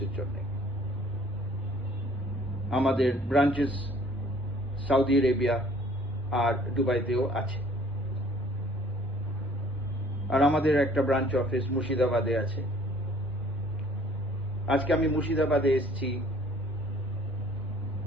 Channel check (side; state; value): both; normal; correlation 0.56